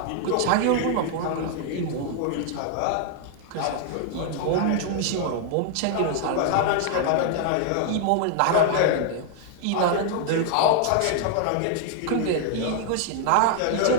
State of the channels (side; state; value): both; different; correlation 0.00